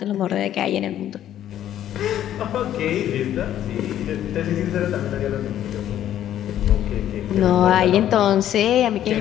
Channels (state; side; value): quieter; right; 11.5 dB